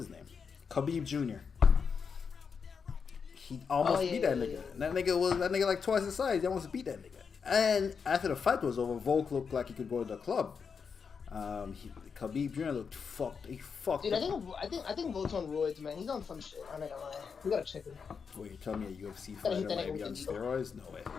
name? Khabib Jr. He almost beat that nigga. And that nigga like twice his size. He almost beat that nigga. And after the fight was over, Volk looked like he could go to the club. Khabib Jr. looked fucked. He fucked. Dude, I think Volt's on roids, man. He's on some shit. I'm not gonna lie. We gotta check him. Wait, you tell me a UFC fighter might be on steroids? No way.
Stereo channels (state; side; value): quieter; right; 6.0 dB